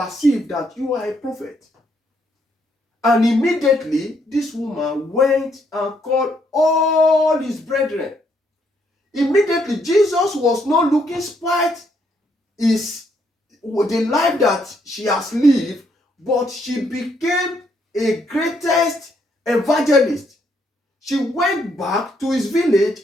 that you are a prophet. And immediately, this woman went and called all his brethren. Immediately, Jesus was not looking spite the life that she has lived, but she became a greatest evangelist. She went back to his village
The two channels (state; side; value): normal; both; correlation 0.73